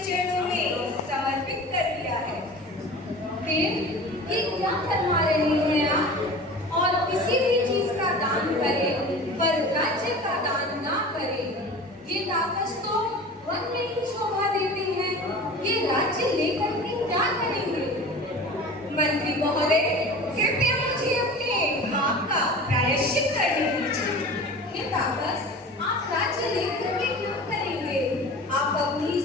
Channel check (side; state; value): both; normal; correlation 0.37